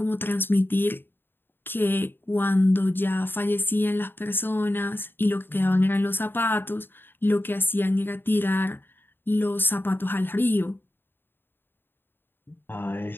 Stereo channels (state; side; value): late; right; 0.099 ms